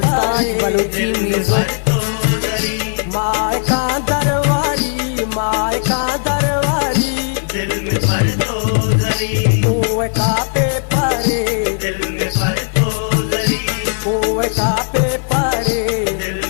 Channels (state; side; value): silent; right; 69 dB below the other